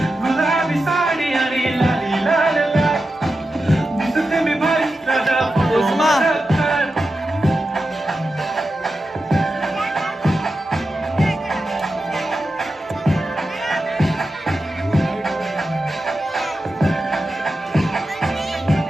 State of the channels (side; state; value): both; normal; correlation 0.91